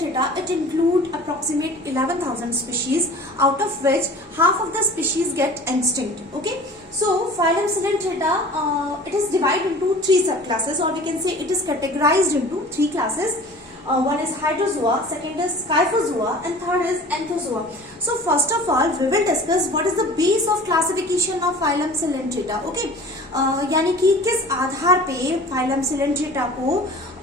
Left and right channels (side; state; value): both; normal; correlation 0.43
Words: it include approximate 11,000 species, out of which half of the species get extinct. Okay, so phylum Coelentera, it is divided into three subclasses, or we can say it is categorized into three classes. One is Hydrozoa, second is Scyphozoa, and third is Anthozoa. So first of all, we will discuss what is the base of classification of phylum Coelentera. Okay, यानी कि किस आधार पे phylum Coelentera को